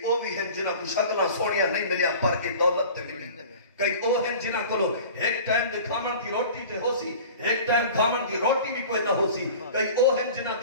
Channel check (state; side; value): inverted; both; correlation -0.41